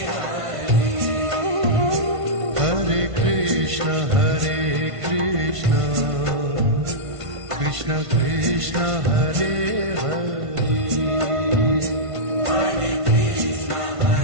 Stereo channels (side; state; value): left; late; 1.5 ms